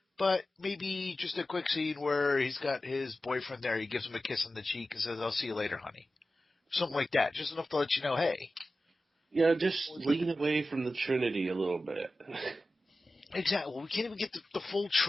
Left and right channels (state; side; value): normal; both; correlation 0.94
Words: but maybe just a quick scene where he's got his boyfriend there. He gives him a kiss on the cheek and says, "I'll see you later, honey." Something like that. Just enough to let you know, hey. Just lean away from the Trinity a little bit. Exactly. Well, we can't even get the full